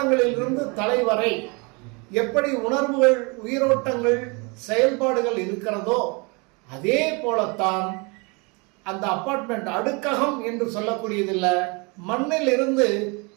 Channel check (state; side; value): quieter; left; 30.2 dB